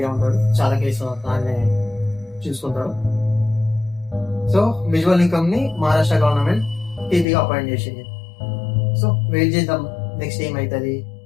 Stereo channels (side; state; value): right; drops out; at 7.2 s